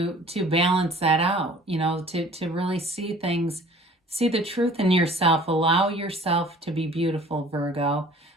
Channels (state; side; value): normal; both; correlation 0.50